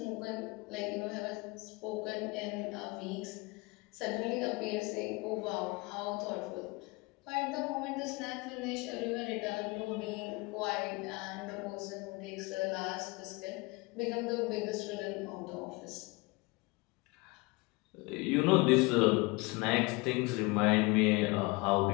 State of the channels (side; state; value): right; quieter; 25.5 dB